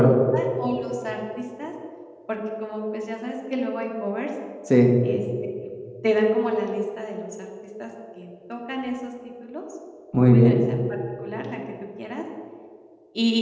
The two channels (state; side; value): identical; both; correlation 1.00